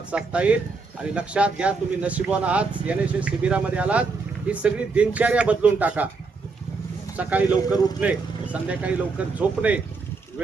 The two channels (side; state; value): left; quieter; 4.3 dB